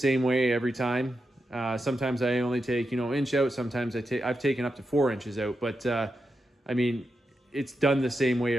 way every time. Sometimes I only take, inch out. Sometimes I've taken up to 4 inches out, but I mean, it's done the same way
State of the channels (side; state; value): both; normal; correlation 0.87